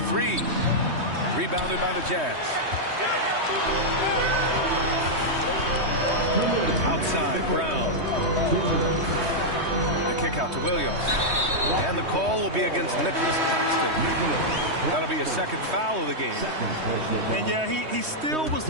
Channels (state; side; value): late; left; 3.2 ms